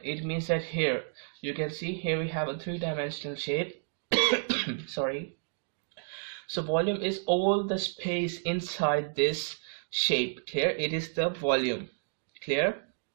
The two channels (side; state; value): left; silent; digital silence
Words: It means that here you can see here we have a three-dimensional shape. Sorry. So volume is all the space inside this shape. Clear? It is the volume. Clear?